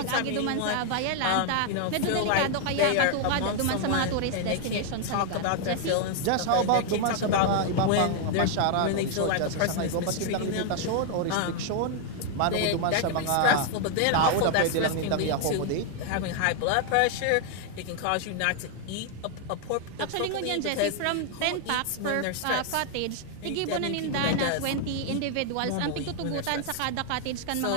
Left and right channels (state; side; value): different; both; correlation 0.00